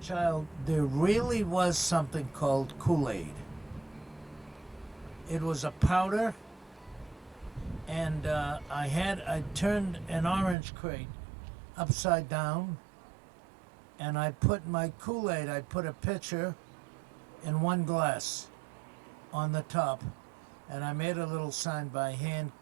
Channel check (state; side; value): drops out; left; at 10.6 s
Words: there really was something called Kool-Aid. It was a powder, and I turned an orange crate upside down, and I put my Kool-Aid, I put a pitcher and one glass on the top, and I made a little sign by hand,